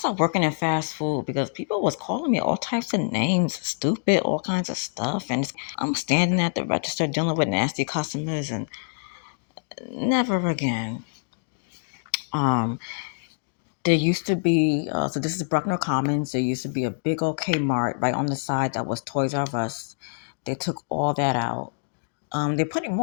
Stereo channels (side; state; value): right; silent; digital silence